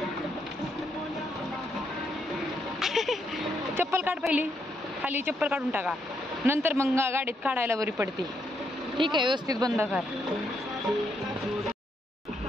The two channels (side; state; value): both; normal; correlation 0.77